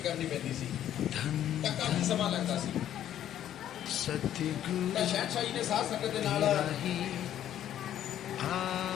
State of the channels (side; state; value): right; quieter; 11.2 dB